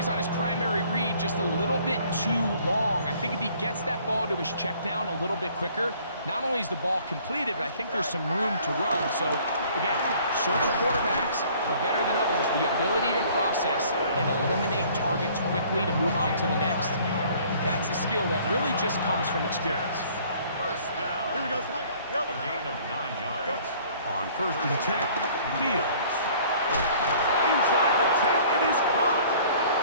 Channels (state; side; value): inverted; both; correlation -0.55